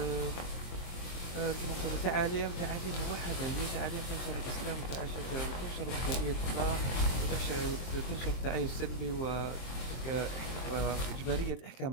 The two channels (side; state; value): right; late; 23 ms